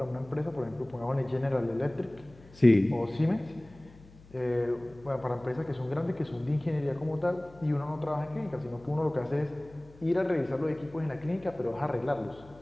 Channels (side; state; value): left; noise; hum, 23 dB below the sound